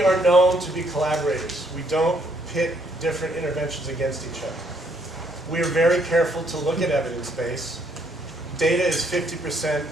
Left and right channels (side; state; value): both; normal; correlation 0.69